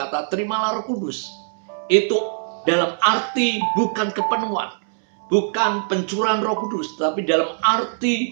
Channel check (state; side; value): silent; left; digital silence